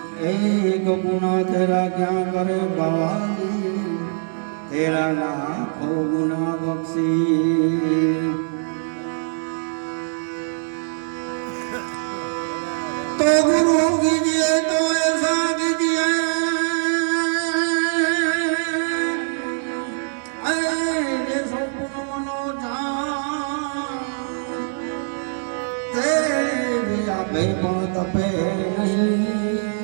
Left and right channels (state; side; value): silent; left; 58 dB below the other